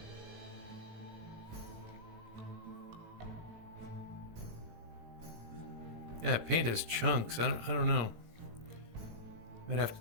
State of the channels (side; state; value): left; late; 18 ms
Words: Yeah, paint has chunks. I don't know. Might have to